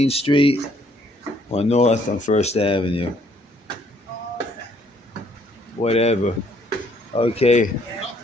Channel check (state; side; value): normal; both; correlation 0.66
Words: Street or north on First Avenue. Whatever. Okay.